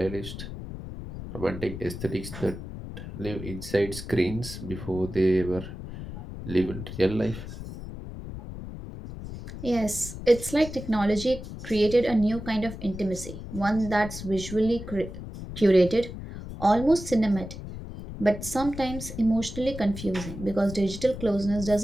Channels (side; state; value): left; noise; rumble, 10 dB below the sound